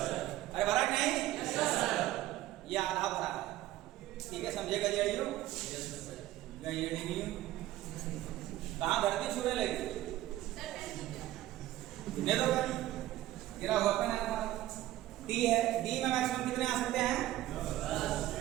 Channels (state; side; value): quieter; left; 15.0 dB